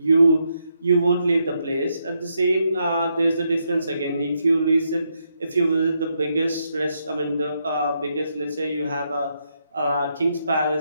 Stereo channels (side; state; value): both; inverted; correlation -0.80